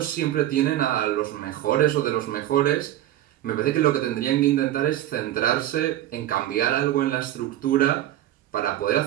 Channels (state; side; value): quieter; left; 13.2 dB